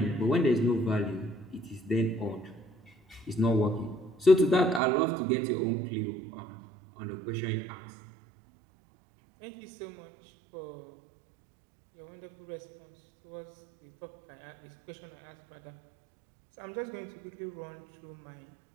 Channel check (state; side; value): drops out; left; at 4.8 s